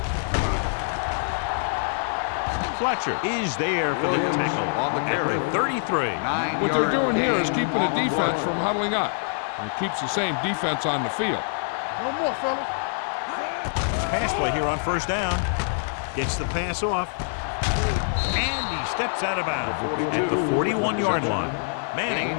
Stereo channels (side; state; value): right; silent; digital silence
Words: Fletcher is there for the tackle at the 33. What they're doing here is keeping the defense from huddling up. And it keeps the same defense on the field. No more, fellas. Pass play here on first down. Gets the pass off. And he steps out of bounds at the 41-yard line. Manning,